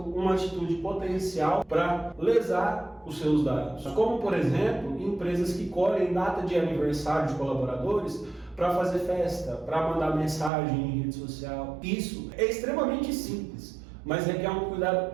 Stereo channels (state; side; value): drops out; left; at 10.5 s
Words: atitude potencial para lesar os seus dados. Como, por exemplo, empresas que colhem data de aniversário de colaboradores para fazer festa, para mandar mensagem em rede social. Isso é extremamente simples, mas requer um